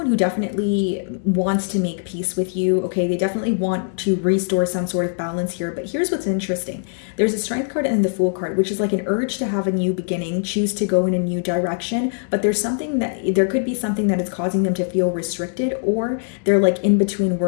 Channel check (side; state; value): right; silent; 65 dB below the other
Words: who definitely wants to make peace with you, okay. They definitely want to restore some sort of balance here, but here's what's interesting. There's a Strength card and the Fool card, which is like an urge to have a new beginning, choose to go in a new direction, but there could be something that is causing them to feel restricted, or they're like in between